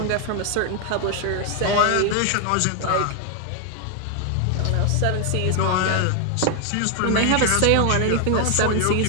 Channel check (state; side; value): different; both; correlation 0.00